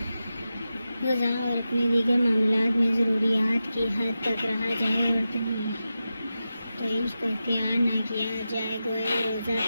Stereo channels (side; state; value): both; inverted; correlation -0.91